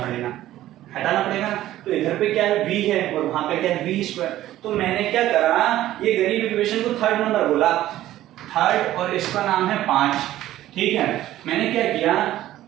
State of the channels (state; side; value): quieter; left; 14.1 dB